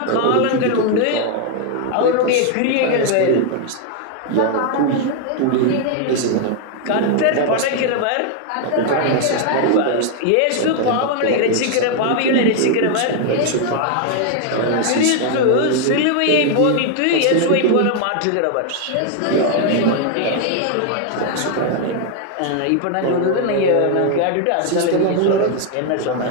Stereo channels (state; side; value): different; both; correlation 0.00